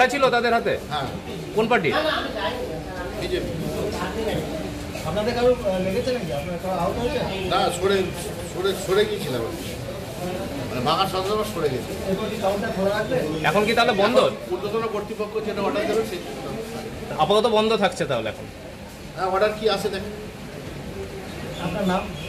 ছিল তাদের হাতে? হ্যাঁ। কোন পার্টি? বিজেপি। আপনাদের কারো লেগেছে নাকি? আপনার কারো আহত হয়েছে? না, সরে গিয়েছিলাম, মানে ভাঙার সঙ্গে সরে গেছে। এখন কি তাহলে বন্ধ? ঊর্ধ্বতন কর্তৃপক্ষ যেটা অর্ডার দেবে সেই আপাতত বন্ধ থাকছে তাহলে এখন? হ্যাঁ, অর্ডার কি আছে দেখেন। আপনার নাম?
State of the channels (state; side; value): identical; both; correlation 1.00